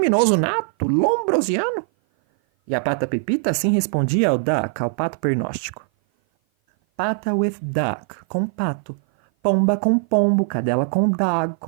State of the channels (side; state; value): left; silent; 56 dB below the other